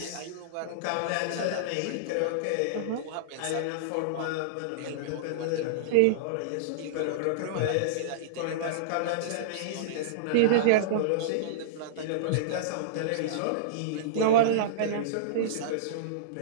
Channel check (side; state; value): both; different; correlation -0.03